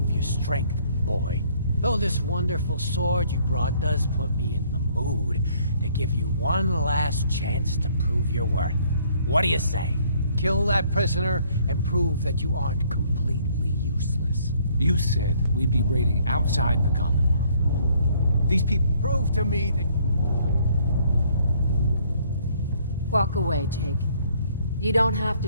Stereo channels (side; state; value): both; inverted; correlation -0.63